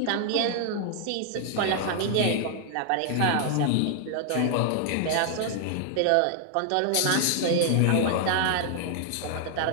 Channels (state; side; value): different; both; correlation 0.00